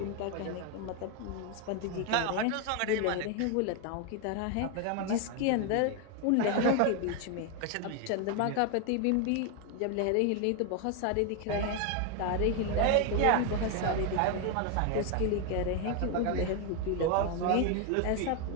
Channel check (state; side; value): different; both; correlation 0.01